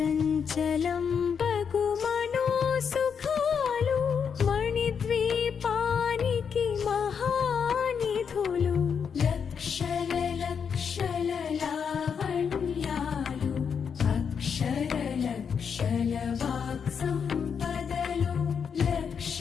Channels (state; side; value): quieter; right; 6.8 dB